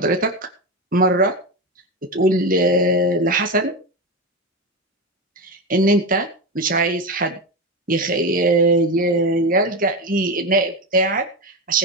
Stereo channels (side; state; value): both; normal; correlation 0.17